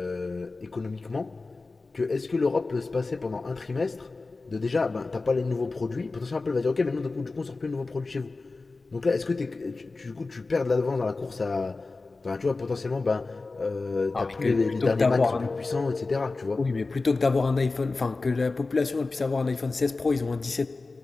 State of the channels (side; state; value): right; quieter; 3.6 dB